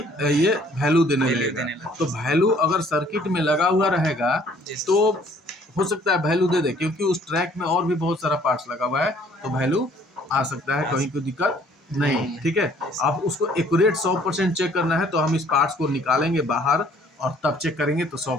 ये वैल्यू देने लगेगा। तो वैल्यू अगर सर्किट में लगा हुआ रहेगा तो हो सकता है वैल्यू दे दे, क्योंकि उस ट्रैक में और भी बहुत सारा पार्ट्स लगा हुआ है, तो वैल्यू आ सकता है, कहीं कोई दिक्कत नहीं, ठीक है। अब उसको एक्यूरेट 100% चेक करना है तो हम इस पार्ट्स को निकालेंगे बाहर और तब चेक करेंगे, तो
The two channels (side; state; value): both; normal; correlation 0.59